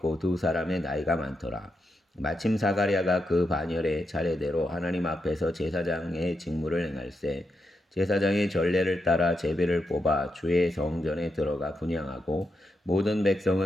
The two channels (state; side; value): normal; both; correlation 0.84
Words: 두 사람의 나이가 많더라. 마침 사가랴가 그 반열에 차례대로 하나님 앞에서 제사장의 직무를 행할세 제사장의 전례를 따라 제비를 뽑아 주의 성전에 들어가 분향하고 모든